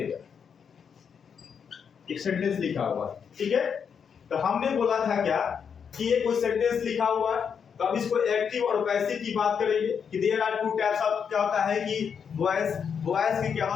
एक सेंटेंस लिखा हुआ है। ठीक है, तो हमने बोला था क्या कि ये कोई सेंटेंस लिखा हुआ है, तो अब इसको एक्टिव और पैसिव की बात करेंगे कि there are two types of, क्या होता है कि वॉइस की क्या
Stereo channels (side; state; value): right; quieter; 7.0 dB